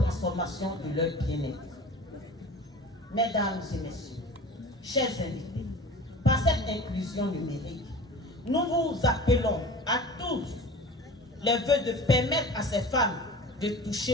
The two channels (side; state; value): both; normal; correlation 0.38